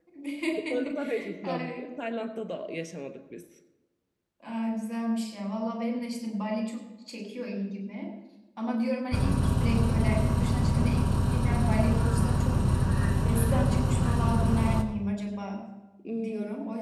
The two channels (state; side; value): identical; both; correlation 1.00